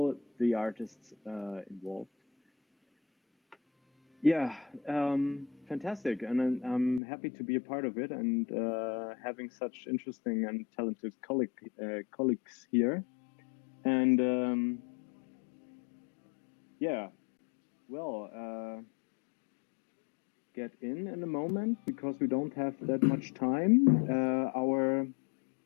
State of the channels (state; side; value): drops out; right; at 7.0 s